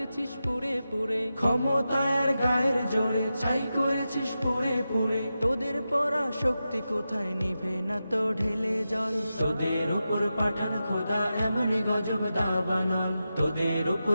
পুরে পুরে, ক্ষমতায়ের গায়ের জোরে ছাই করেছিস পুরে পুরে। তোদের পরা শক্তি কোথায় নিভে না তো ঢেলে জল। তোদের উপর পাঠান খোদা এমনি গজব দাবানল। তোদের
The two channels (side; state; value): both; inverted; correlation -0.91